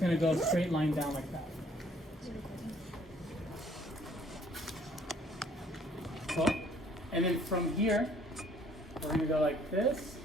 gonna go straight line down like that. So, and then from here, we're gonna go like this,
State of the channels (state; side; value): normal; both; correlation 0.60